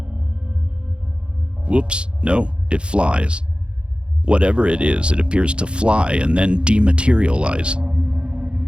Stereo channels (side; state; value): left; late; 0.056 ms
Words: Whoops, no, it flies. Whatever it is, it appears to fly and then dematerialize.